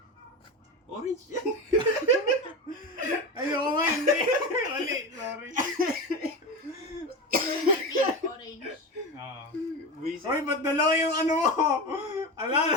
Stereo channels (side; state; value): both; normal; correlation 0.22